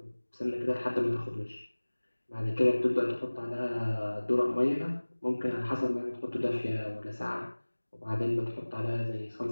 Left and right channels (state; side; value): inverted; both; correlation -1.00